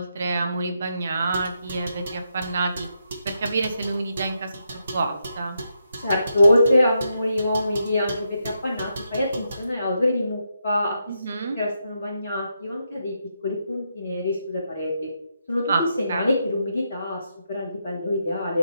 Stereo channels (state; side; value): inverted; both; correlation -0.82